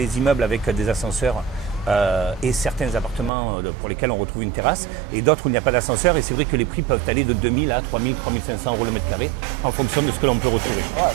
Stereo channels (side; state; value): left; drops out; at 3.3 s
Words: immeubles avec des ascenseurs et certains appartements pour lesquels on retrouve une terrasse et d'autres où il n'y a pas d'ascenseur, et c'est vrai que les prix peuvent aller de 2000 à 3000, 3500 euros le mètre carré en fonction de ce que l'on peut retrouver. Ouais,